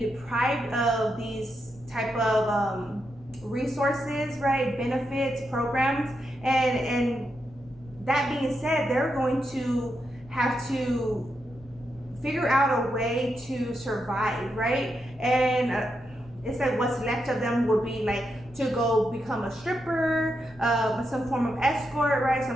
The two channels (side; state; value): left; noise; rumble, 23 dB below the sound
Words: of these type of resources, right? Benefits, programs, and that being said, they're going to have to figure out a way to survive, right? And it's like what's left of them would be like to go become a stripper, some form of escort, right?